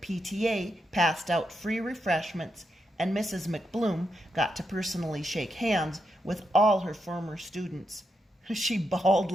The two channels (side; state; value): both; normal; correlation 0.84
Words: passed out free refreshments, and Mrs. McBloom got to personally shake hands with all her former students. She bawled